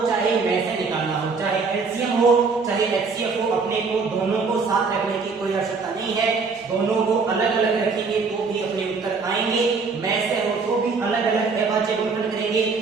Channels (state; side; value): quieter; left; 4.7 dB